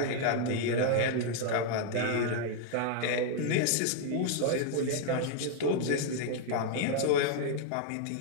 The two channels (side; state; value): both; different; correlation 0.00